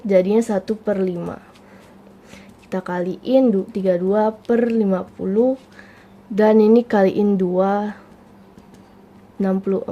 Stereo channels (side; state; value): both; identical; correlation 1.00